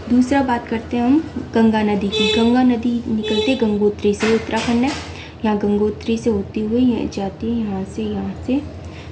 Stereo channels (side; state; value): both; identical; correlation 1.00